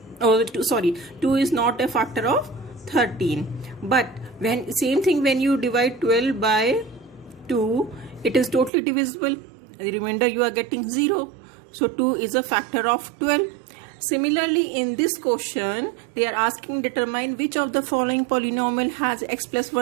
Oh, 2 is not a factor of 13. But when same thing, when you divide 12 by 2, it is totally divisible. The remainder you are getting 0. So 2 is a factor of 12. Similarly, in this question, they are asking determine which of the following polynomial has x plus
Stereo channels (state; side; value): drops out; left; at 8.7 s